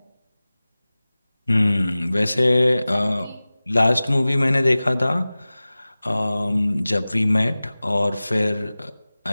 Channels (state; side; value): inverted; both; correlation -0.98